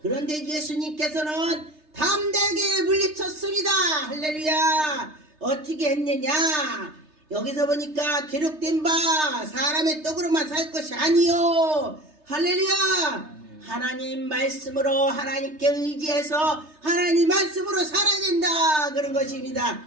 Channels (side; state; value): left; late; 3.3 ms